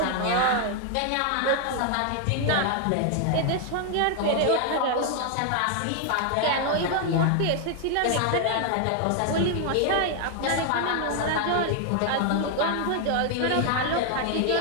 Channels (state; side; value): different; both; correlation 0.00